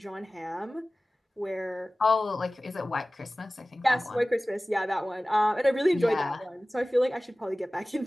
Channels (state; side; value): normal; both; correlation 0.97